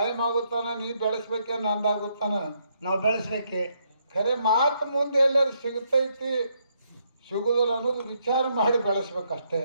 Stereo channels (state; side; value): inverted; both; correlation -0.75